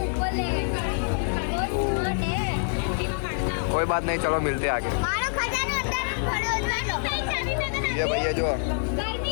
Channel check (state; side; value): silent; right; digital silence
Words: ऊपर ले गए. बहुत स्मार्ट है. कोई बात नहीं, चलो मिलते हैं आगे. मारो खजानो अंदर पड़ो लो. नहीं चाबी में तो ये भैया जो